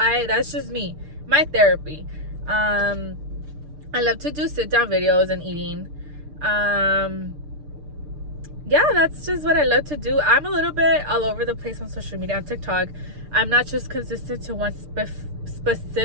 just me, my therapy. I love to do sit down videos and eating. yeah, that's just what I love to do. I'm a little bit all over the place on social media, on TikTok. I'm not just consistent to one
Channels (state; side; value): late; left; 6.7 ms